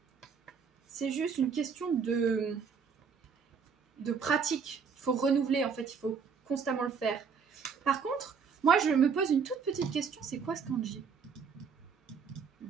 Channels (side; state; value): left; quieter; 6.1 dB